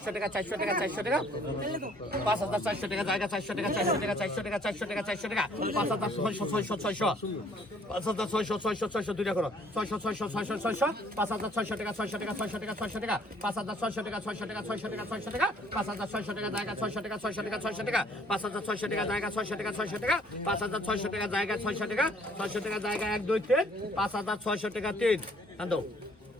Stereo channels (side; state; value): both; normal; correlation 0.60